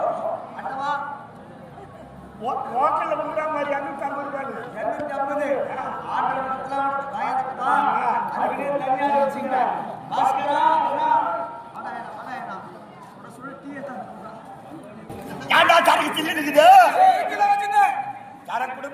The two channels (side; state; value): both; identical; correlation 1.00